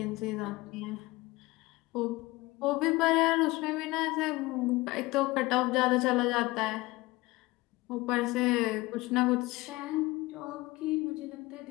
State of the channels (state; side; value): quieter; right; 21.0 dB